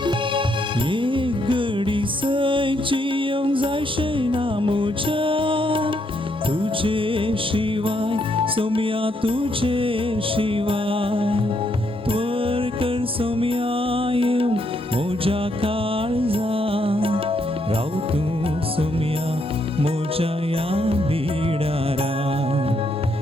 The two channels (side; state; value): both; normal; correlation 0.75